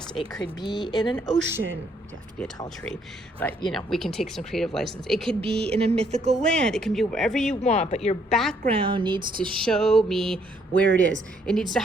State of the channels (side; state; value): both; normal; correlation 0.69